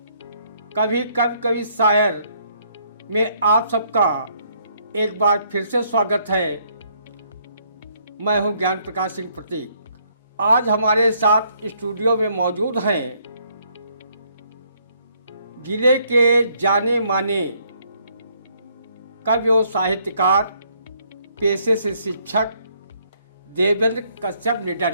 कभी कब कभी शायर में आप सबका एक बार फिर से स्वागत है। मैं हूं ज्ञान प्रकाश सिंह प्रतीक। आज हमारे साथ स्टूडियो में मौजूद हैं जिले के जाने माने कवि और साहित्यकार, पेशे से शिक्षक देवेंद्र कश्यप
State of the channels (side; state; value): both; inverted; correlation -0.68